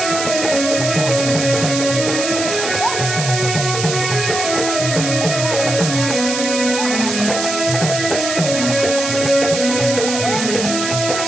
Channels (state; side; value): noise; right; hiss, 4 dB below the sound